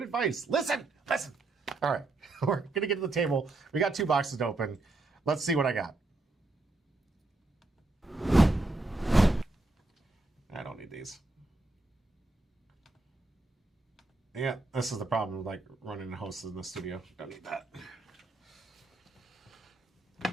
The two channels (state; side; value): quieter; left; 3.0 dB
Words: advice. Listen. All right, we're going to get to the table. We got 2 boxes to open. Let's see what I got. I don't need these. Yeah, this is the problem with like running a host in the studio. Don't need that.